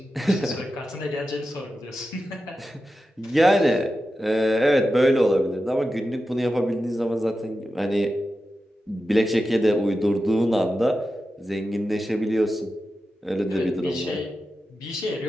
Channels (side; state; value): both; normal; correlation 0.91